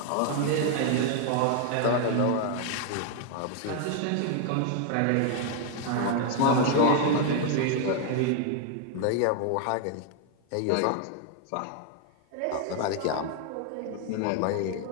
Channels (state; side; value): different; both; correlation 0.00